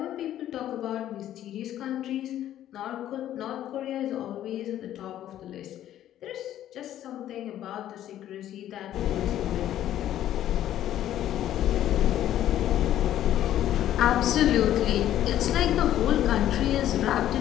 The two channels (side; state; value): right; quieter; 12.1 dB